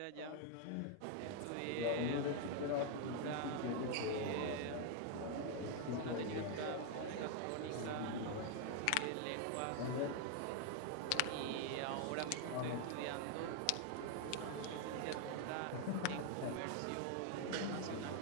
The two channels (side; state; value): both; different; correlation 0.01